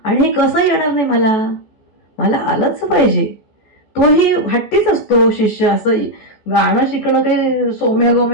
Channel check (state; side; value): late; right; 14 ms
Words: आणि हे कसं येणार नाही मला आलंच पाहिजे. तोही हट्टीच असतो शिष्य. असं गाणं शिकणं काही सोम्या